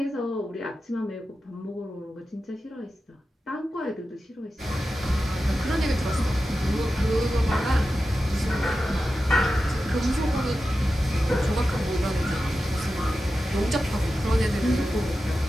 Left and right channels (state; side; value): normal; both; correlation 0.92